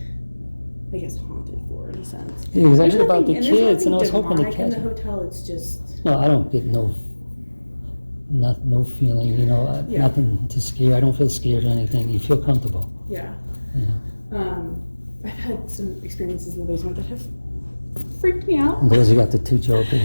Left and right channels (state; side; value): inverted; both; correlation -1.00